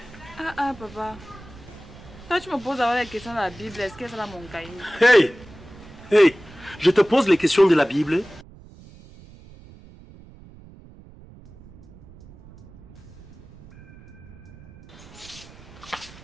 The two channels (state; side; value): noise; right; rumble, 21 dB below the sound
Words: Ah, papa. Quand tu me poses avoir les questions de la Bible, est-ce que c'est là mon cahier? Hey! Hey! Je te pose les questions de la Bible.